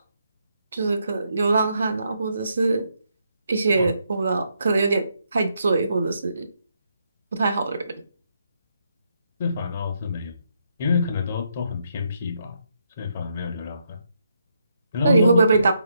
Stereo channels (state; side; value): inverted; both; correlation -0.78